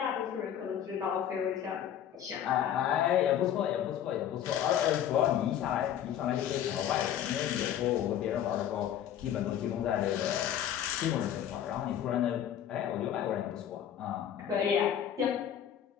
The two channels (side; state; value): right; quieter; 10.1 dB